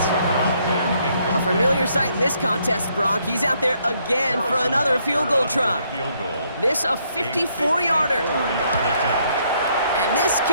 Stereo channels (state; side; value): inverted; both; correlation -0.71